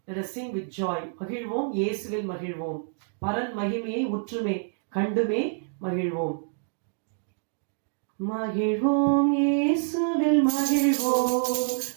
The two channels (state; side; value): silent; left; digital silence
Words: Let us sing with joy. மகிழ்வோம் இயேசுவில் மகிழ்வோம். பரன் மகிமையை உற்றுமே கண்டுமே மகிழ்வோம். மகிழ்வோம் இயேசுவில் மகிழ்வோம்,